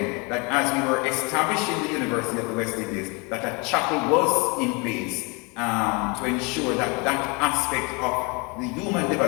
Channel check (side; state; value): right; quieter; 29.8 dB